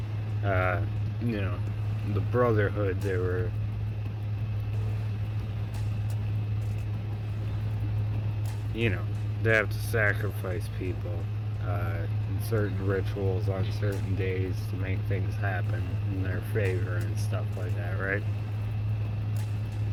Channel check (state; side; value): identical; both; correlation 1.00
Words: Uh, you know, the Brotherhood, you know, they have to sacrifice people in certain rituals on certain days to make things happen in their favor and stuff like that, right?